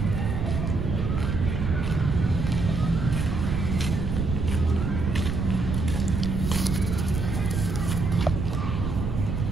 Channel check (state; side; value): noise; right; rumble, 2 dB below the sound